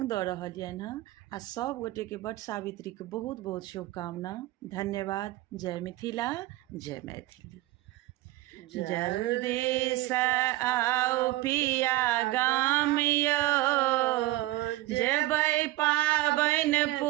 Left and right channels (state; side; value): quieter; left; 17.7 dB